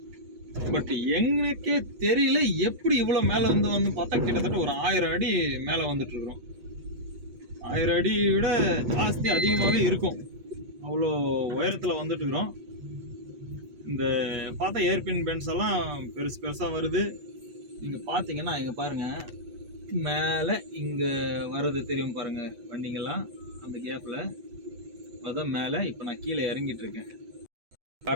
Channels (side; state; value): left; late; 8.3 ms